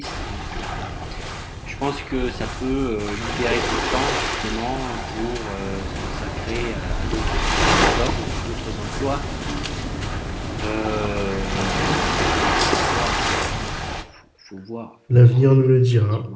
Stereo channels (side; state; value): both; identical; correlation 1.00